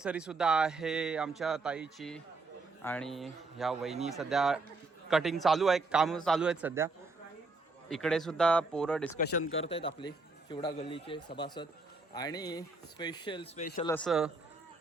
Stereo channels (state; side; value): quieter; left; 3.6 dB